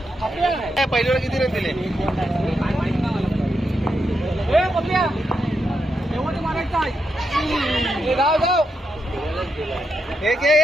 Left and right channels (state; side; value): normal; both; correlation 0.84